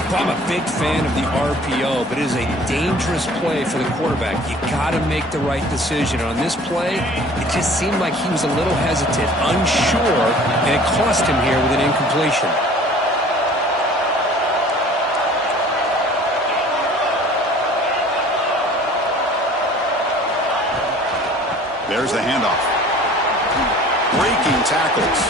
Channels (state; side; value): normal; both; correlation 0.48